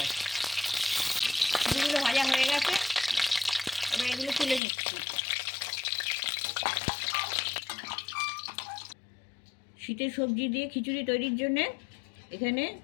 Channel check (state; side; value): drops out; right; at 4.6 s